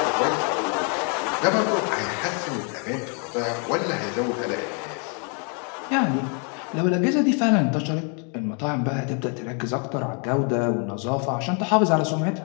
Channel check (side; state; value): right; quieter; 38.1 dB